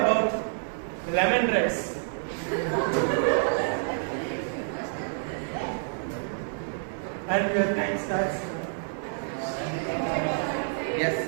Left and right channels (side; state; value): left; silent; 56 dB below the other